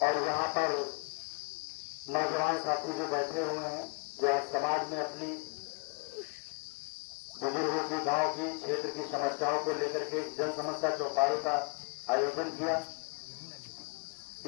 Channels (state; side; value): quieter; right; 34.6 dB